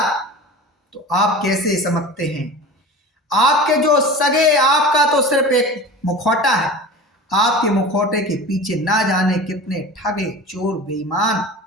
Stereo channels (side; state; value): both; normal; correlation 0.35